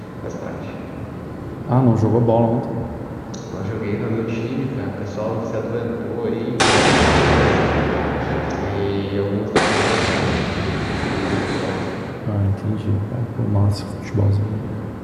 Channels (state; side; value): identical; both; correlation 1.00